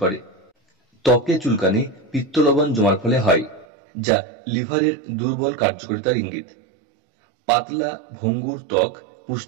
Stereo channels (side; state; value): left; drops out; at 3.7 s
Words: ত্বকে চুলকানি পিত্তলবণ জমার ফলে হয়, যা লিভারের দুর্বল কার্যকারিতার ইঙ্গিত। পাতলা ভঙ্গুর ত্বক